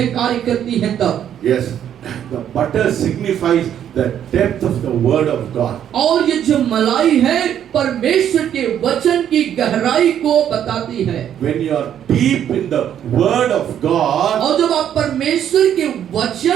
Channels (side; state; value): left; quieter; 9.9 dB